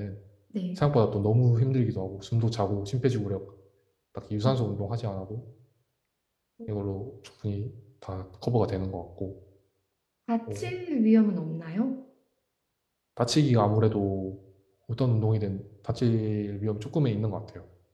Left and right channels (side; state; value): both; identical; correlation 1.00